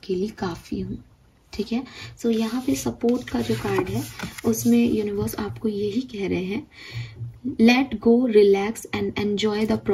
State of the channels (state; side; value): identical; both; correlation 1.00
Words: काफ़ी हूँ, ठीक है। सो यहाँ पे सपोर्ट का जो कार्ड है उसमें यूनिवर्स आपको यही कह रहे हैं, let go, relax and enjoy the